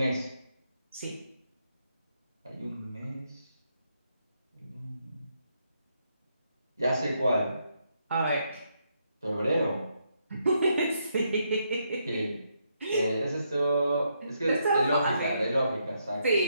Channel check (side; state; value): both; inverted; correlation -0.78